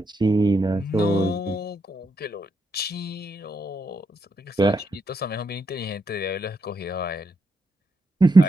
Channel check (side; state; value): both; normal; correlation 0.81